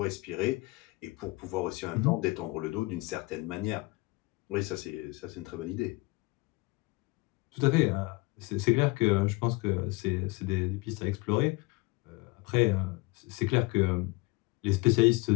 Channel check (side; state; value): right; quieter; 24.3 dB